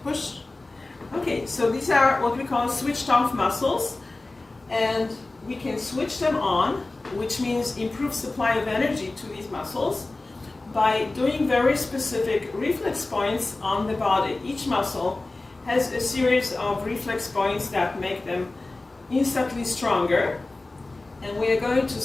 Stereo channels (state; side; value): quieter; right; 3.1 dB